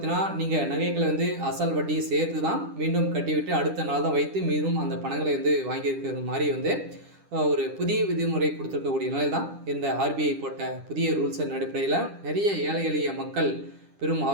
நீங்கள் நகைகளை அசல் வட்டி சேர்த்து தான் மீண்டும் கட்டிவிட்டு அடுத்த நாள் தான் வைத்து மீண்டும் அந்த பணங்களை வாங்கியிருக்கிற மாதிரி ஒரு புதிய விதிமுறை கொடுத்துருக்கக்கூடிய நிலை தான் இந்த ஆர்பிஐ போட்ட புதிய ரூல்ஸின் அடிப்படையில் நிறைய ஏழை எளிய மக்கள் பெரும்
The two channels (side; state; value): left; late; 10 ms